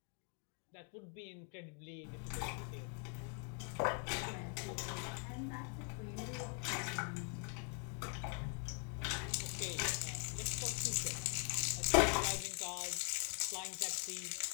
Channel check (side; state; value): right; quieter; 37.6 dB